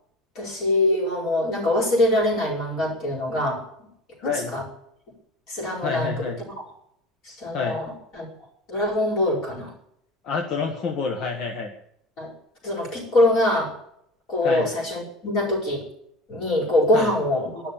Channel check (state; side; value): normal; both; correlation 0.33